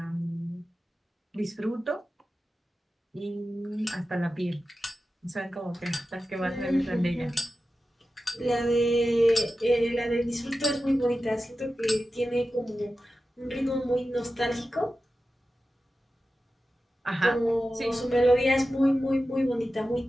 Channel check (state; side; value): normal; both; correlation 0.93